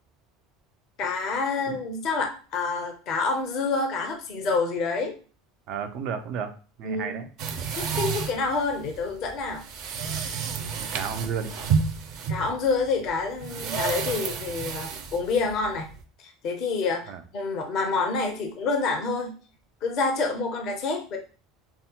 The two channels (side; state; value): both; normal; correlation 0.31